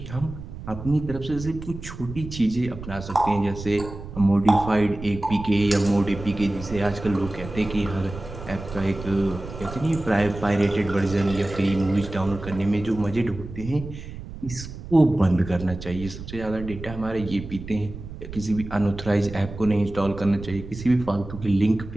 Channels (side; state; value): right; noise; rumble, 11 dB below the sound